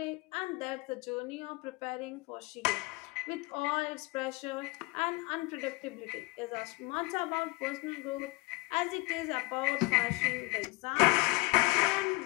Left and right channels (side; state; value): right; quieter; 24.6 dB